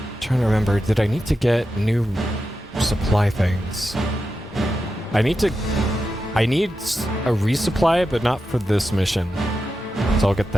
Trying to remember, did I need to get new supply things? I need a resupply, but not for this mission. So I'll get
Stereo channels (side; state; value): both; normal; correlation 0.89